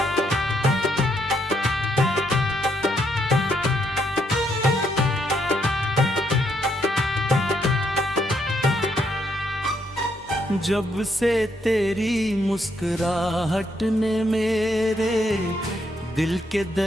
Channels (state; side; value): normal; both; correlation 0.75